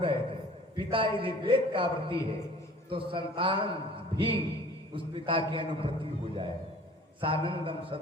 थे, पिता यदि वेद का व्रती है तो संतान भी उस पिता की अनुप्रति हो जाए। सानंदम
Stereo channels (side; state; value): both; normal; correlation 0.48